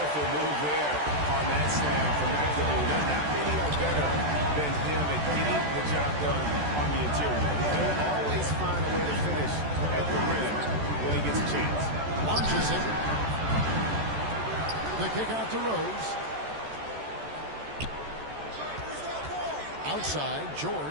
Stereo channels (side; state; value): left; late; 14 ms